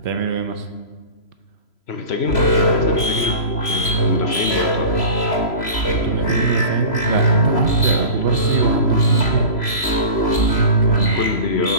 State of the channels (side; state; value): right; late; 3.0 ms